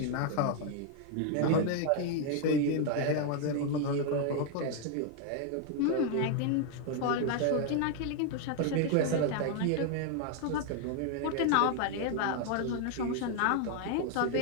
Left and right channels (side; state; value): both; different; correlation 0.00